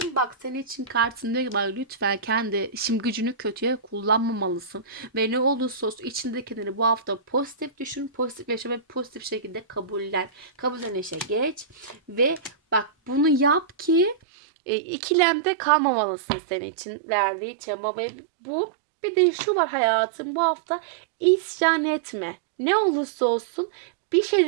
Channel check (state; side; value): drops out; left; at 14.2 s